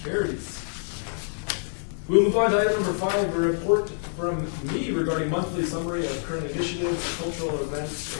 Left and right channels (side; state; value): right; silent; digital silence